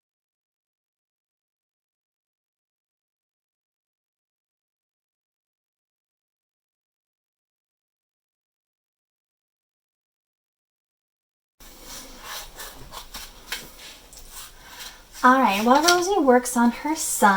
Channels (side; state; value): both; identical; correlation 1.00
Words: Alright, while Rosie works on her